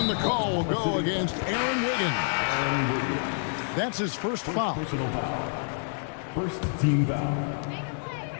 the call will go against Aaron Wiggins. That's his first foul. Personal foul. First team foul.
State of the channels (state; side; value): silent; right; 59 dB below the other